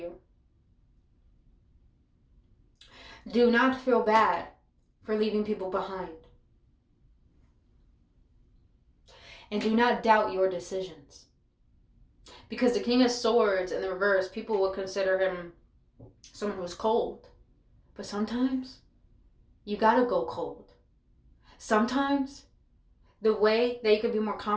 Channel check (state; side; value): identical; both; correlation 1.00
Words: Do not feel bad for leaving people behind. And do not doubt your decisions. Because the King of Swords in the reverse, people will consider him someone who's cold. But sometimes you gotta go cold. Sometimes the way that you can be more